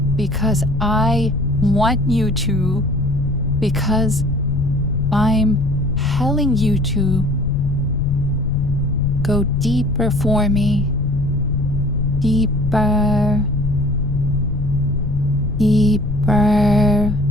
Because I want you to. Because I'm telling you to. Go deeper for me. Deeper. Deeper.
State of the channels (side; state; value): left; noise; rumble, 4 dB below the sound